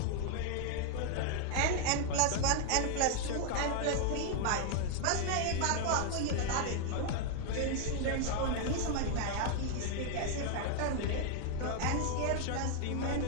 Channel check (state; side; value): different; both; correlation 0.00